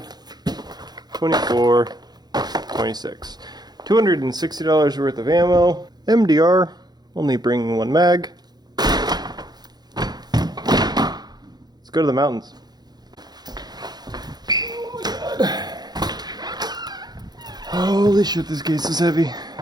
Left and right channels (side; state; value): left; late; 0.20 ms